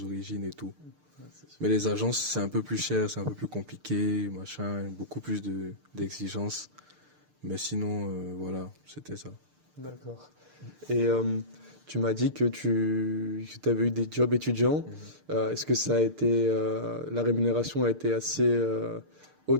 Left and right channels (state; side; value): late; left; 6.6 ms